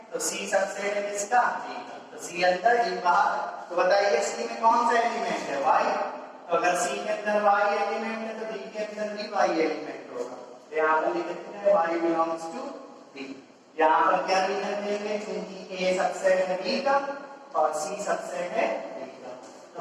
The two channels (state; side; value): identical; both; correlation 1.00